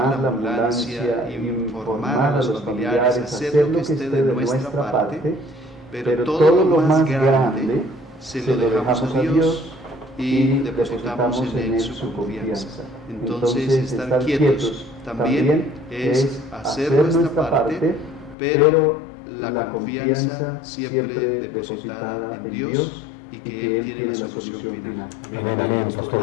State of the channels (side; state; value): right; drops out; at 18.4 s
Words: a la ambulancia, informar a los familiares, hacer lo que esté de nuestra parte, pero todo lo más grande se lo dejamos a Dios y depositamos en Él su confianza. Entonces, estar quietos también es hacer nuestra parte, pero la confianza siempre depositada en Dios, y que Él tiene la solución final. Amén, amén,